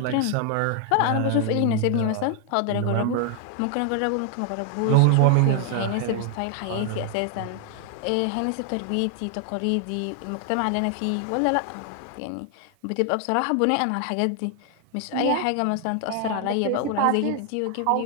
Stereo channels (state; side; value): different; both; correlation 0.00